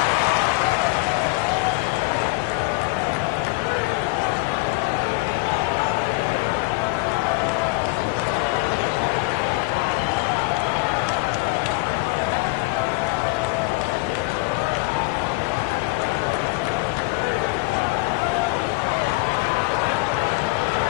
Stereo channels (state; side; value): quieter; right; 24.8 dB